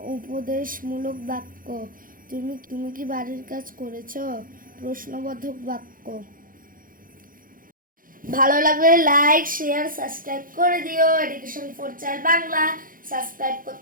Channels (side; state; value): left; late; 0.40 ms